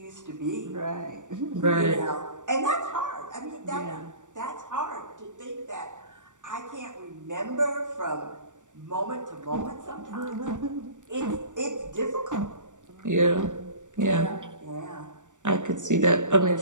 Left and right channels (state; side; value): late; left; 0.86 ms